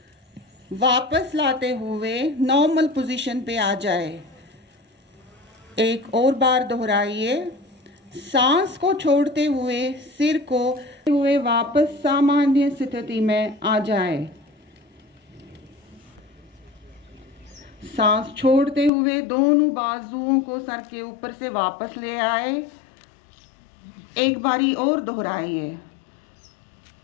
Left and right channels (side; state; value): right; drops out; at 18.9 s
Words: वापस लाते हुए नॉर्मल पोजीशन पे आ जाए। एक और बार दोहराइए। सांस को छोड़ते हुए सिर को हुए वापस सामान्य स्थिति में आ जाए। सांस छोड़ते हुए दोनों बाजुओं को सर के ऊपर से वापस ले आए। एक बारी और दोहराइए।